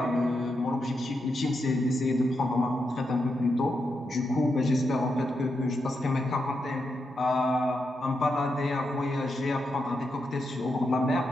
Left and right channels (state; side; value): normal; both; correlation 0.84